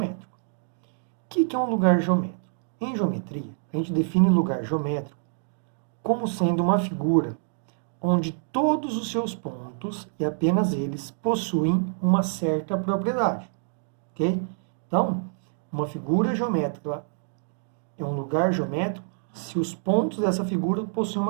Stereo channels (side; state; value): left; silent; digital silence